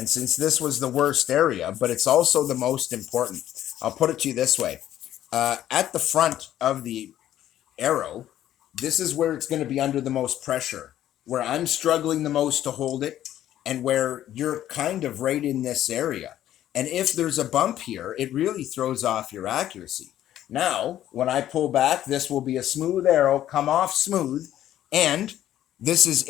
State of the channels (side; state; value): right; quieter; 12.2 dB